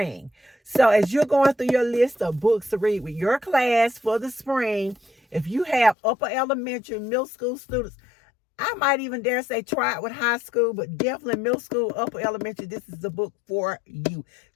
So as you're going through your list of books to read with your class for the spring, if you have upper elementary, middle school students, I might even dare say try it with high school, but definitely middle school, upper elementary, this is the book for you.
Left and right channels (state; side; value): drops out; right; at 6.0 s